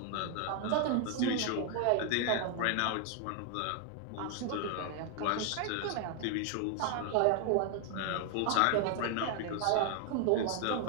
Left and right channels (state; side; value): different; both; correlation 0.00